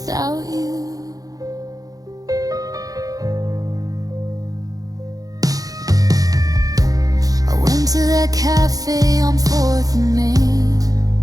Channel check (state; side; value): late; left; 0.17 ms